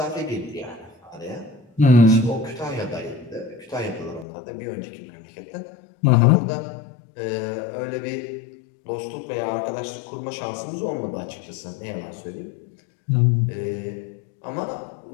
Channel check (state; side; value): drops out; right; at 4.2 s